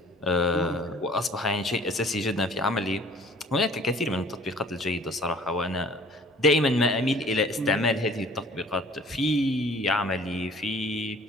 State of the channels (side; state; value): both; normal; correlation 0.52